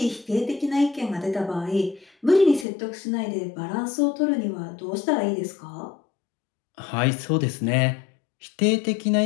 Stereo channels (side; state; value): right; drops out; at 2.7 s